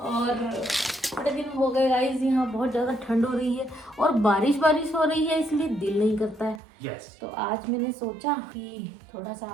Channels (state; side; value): drops out; left; at 6.6 s